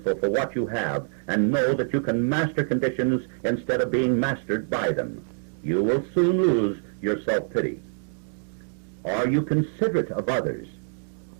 for what you have, and know that you can master conditions instead of being mastered by them. You will soon lose your self-pity. Are you considerate of others?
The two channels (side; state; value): left; silent; 61 dB below the other